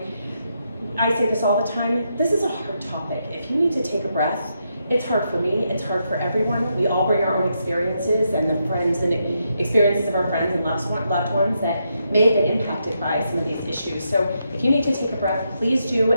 I say this all the time, this is a hard topic. If you need to take a breath, it's hard for me, it's hard for everyone. We all bring our own experiences and the friends and experiences of our friends and loved ones that may have been impacted by some of these issues. So if you need to take a breath, please do,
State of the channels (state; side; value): inverted; both; correlation -0.81